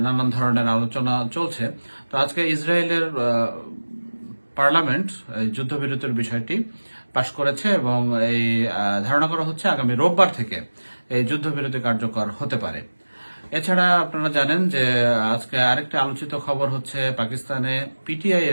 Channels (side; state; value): both; inverted; correlation -1.00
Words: নানান ধরনের আলোচনা চলছে। তো আজকে ইসরায়েলের পার্লামেন্ট যুদ্ধবিরতির বিষয়টি পাশ করেছে এবং এই ধারণা করা হচ্ছে আগামী রোববার থেকে এই যুদ্ধবিরতি কার্যকর হতে পারে। এছাড়া আপনারা জানেন যে আজকে আরেকটা আলোচিত খবর হচ্ছে পাকিস্তানে পিটিআই